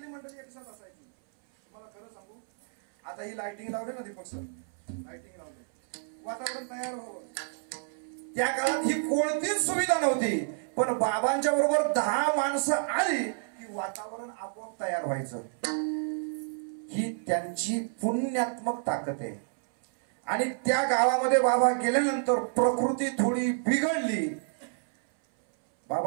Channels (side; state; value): left; silent; 58 dB below the other